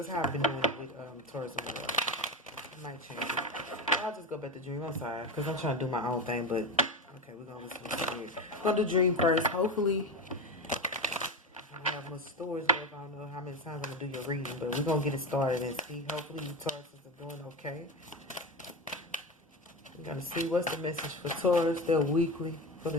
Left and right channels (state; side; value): normal; both; correlation 0.20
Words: how I've been doing it with Taurus and Virgo. I might change it. But I'll just go back to dream. I'm sorry, because I'm trying to do my own thing, but okay, we're going to listen to dream. I'm going to do dream first. Hopefully, I don't have much storage left. I don't know how many times I'm going to do your reading, but we're going to get it started and see. Hopefully, you Tauruses are doing okay. We're going to see what's the message for Taurus. They're weekly for the